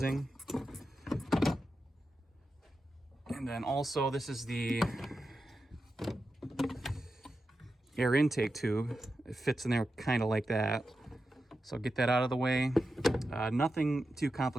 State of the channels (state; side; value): normal; both; correlation 0.90